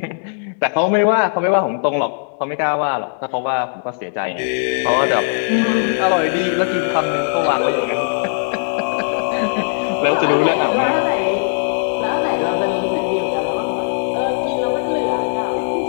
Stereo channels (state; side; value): silent; right; 67 dB below the other